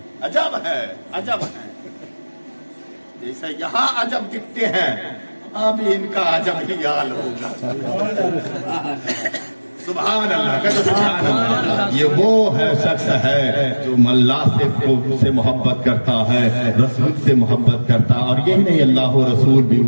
अजब है, अजब है। जैसे यहाँ अजब दिखते हैं, अब इनका अजब ही हाल होगा। सुभान अल्लाह, कहते सुभान अल्लाह। ये वो है शख्स है जो अल्लाह से मोहब्बत करता है, रसूल से मोहब्बत करता है। और यही नहीं, अल्लाह और रसूल भी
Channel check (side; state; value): both; inverted; correlation -1.00